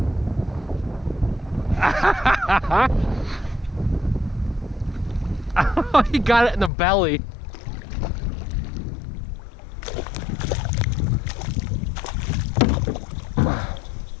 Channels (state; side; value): drops out; right; at 6.7 s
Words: Oh, he got it in the belly.